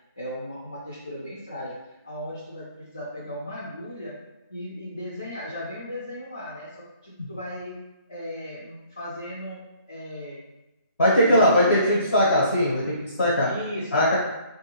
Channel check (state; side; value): inverted; both; correlation -0.57